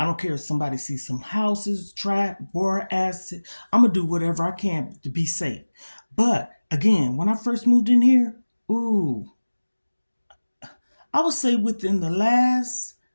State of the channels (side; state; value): both; inverted; correlation -1.00